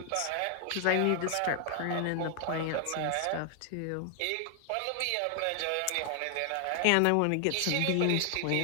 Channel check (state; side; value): different; both; correlation 0.00